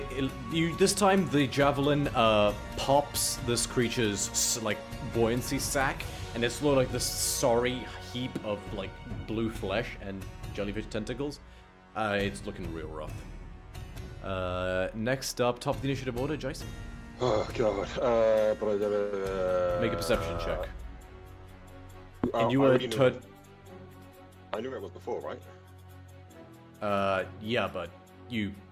You this time the javelin pops this creature's like buoyancy sac, and it's sort of like this sorry heap of like blue flesh and jellyfish tentacles. It's looking real rough. Next up, top of the initiative order, Jason. Oh god. Make a perception check. Oh, And you I were already knew it. I knew where it was before, right? Yeah, but you've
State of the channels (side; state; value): both; identical; correlation 1.00